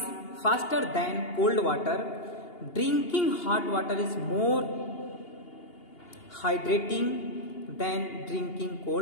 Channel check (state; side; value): late; right; 2.8 ms